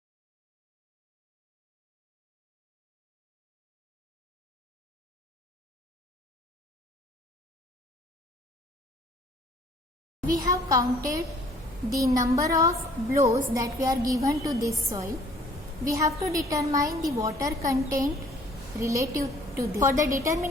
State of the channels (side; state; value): both; normal; correlation 0.56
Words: We have counted the number of blows that we are given to this soil. We have to determine the water content relative to this. For the